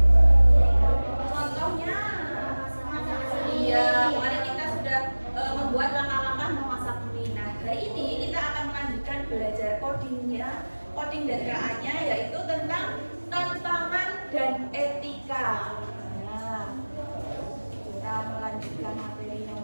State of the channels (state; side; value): inverted; both; correlation -1.00